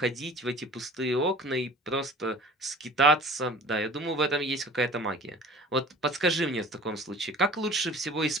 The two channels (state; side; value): normal; both; correlation 0.45